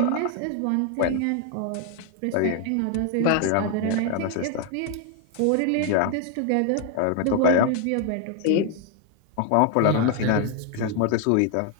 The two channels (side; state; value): both; different; correlation 0.00